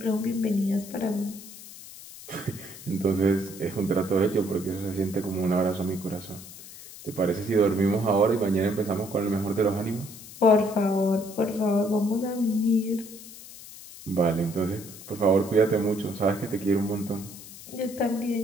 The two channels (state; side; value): noise; left; hiss, 16 dB below the sound